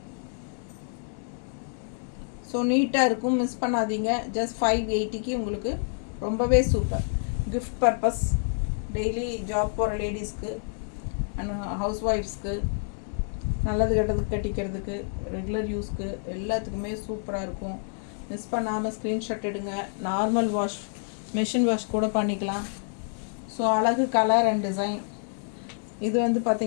ஸோ நீட்டாக இருக்கும், மிஸ் பண்ணாதீங்க. ஜஸ்ட் 580க்கு உங்களுக்கு ரொம்பவே super. Gift purpose, daily job போகிற லேடிஸ்க்கு அண்ட் ஹவுஸ் ஒய்ஃப்ஸ்க்கு, நல்லது கெட்டதுக்கு கட்டிக்கிறதுக்கு, ரெகுலர் யூஸ்க்கு எல்லாத்துக்குமே சூப்பராக இருக்கும். மிஸ் பண்ணாமல் ஸ்க்ரீன்ஷாட் எடுங்க. நார்மல் வாஷ், மெஷின் வாஷ் கூட பண்ணிக்கலாம். ஸோ அழகு கலர் அண்ட் டிசைன். இது வந்து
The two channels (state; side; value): silent; right; digital silence